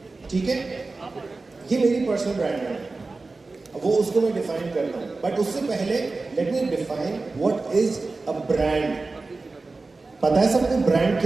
ठीक है? ये मेरी पर्सनल ब्रांड है, वो उसको मैं डिफाइन करता हूँ, बट उससे पहले let me define what is a brand. पता है सबको ब्रांड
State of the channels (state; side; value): quieter; left; 3.6 dB